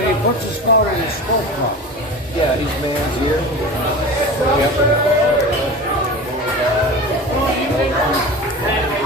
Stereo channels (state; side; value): normal; both; correlation 0.32